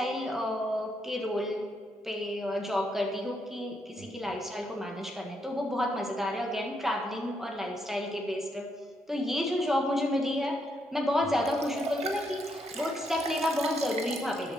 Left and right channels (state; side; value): normal; both; correlation 0.77